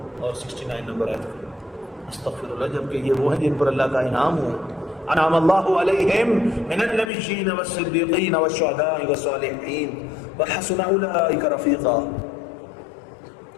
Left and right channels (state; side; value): drops out; right; at 7.1 s